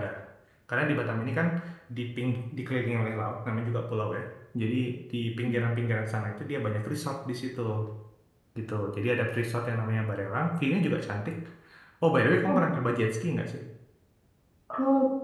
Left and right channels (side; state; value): both; identical; correlation 1.00